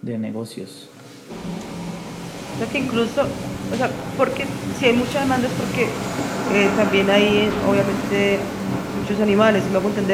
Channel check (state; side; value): identical; both; correlation 1.00